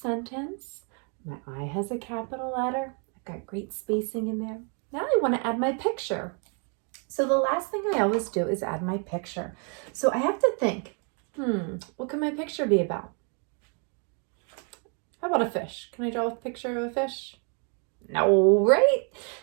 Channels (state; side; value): quieter; left; 38.9 dB